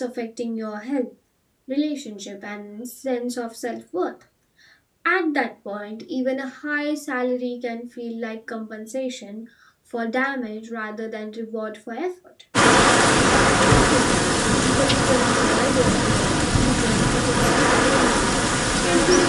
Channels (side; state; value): both; identical; correlation 1.00